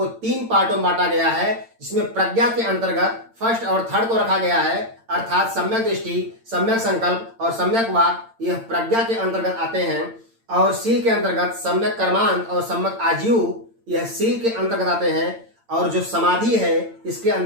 3 पार्टों में बांटा गया है, जिसमें प्रज्ञा के अंतर्गत फर्स्ट और थर्ड को रखा गया है, अर्थात सम्यक दृष्टि, सम्यक संकल्प और सम्यक वाक, यह प्रज्ञा के अंतर्गत आते हैं। और सील के अंतर्गत सम्यक कर्मांत और सम्यक आजीव, यह सील के अंतर्गत आते हैं। और जो समाधि है इसके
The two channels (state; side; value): late; left; 8.8 ms